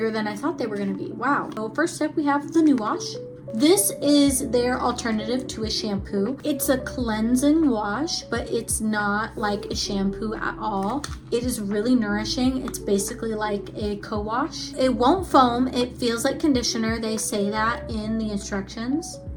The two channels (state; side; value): identical; both; correlation 1.00